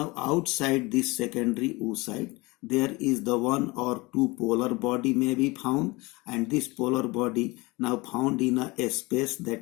outside this secondary oocyte, there is the 1 or 2 polar body may be found, and this polar body now found in a space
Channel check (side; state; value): right; quieter; 23.7 dB